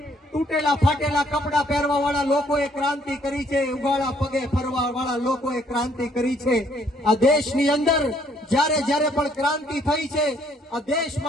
તૂટેલા ફાટેલા કપડા પહેરવા વાળા લોકોએ ક્રાંતિ કરી છે, ઉગાડા પગે ફરવા વાળા લોકોએ ક્રાંતિ કરી છે। આ દેશની અંદર જ્યારે પણ ક્રાંતિ થઈ છે, આ દેશ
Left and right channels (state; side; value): normal; both; correlation 0.66